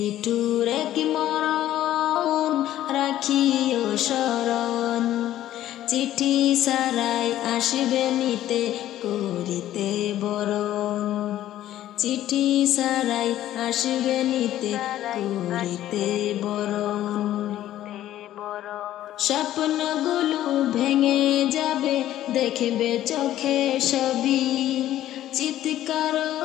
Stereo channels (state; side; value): quieter; right; 13.1 dB